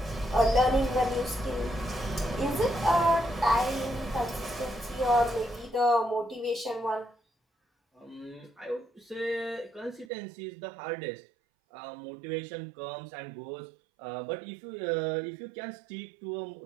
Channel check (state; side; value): drops out; left; at 10.1 s